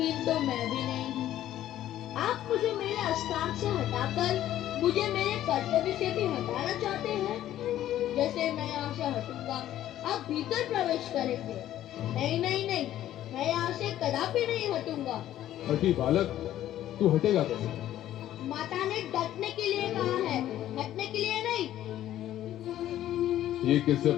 तो मैं भी नहीं हूँ। आप मुझे मेरे स्थान से हटाकर मुझे मेरे कर्तव्य से भी हटाना चाहते हैं। जैसे मैं यहाँ से हटूंगा, आप भीतर प्रवेश करेंगे। नहीं नहीं नहीं, मैं यहाँ से कदापि नहीं हटूंगा। हटी बालक, तू हटेगा कैसे? माता ने डटने के लिए कहा है, हटने के लिए नहीं। ये किससे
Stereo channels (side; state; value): right; quieter; 12.6 dB